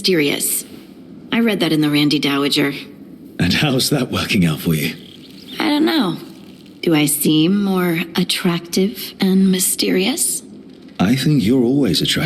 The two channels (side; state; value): both; identical; correlation 1.00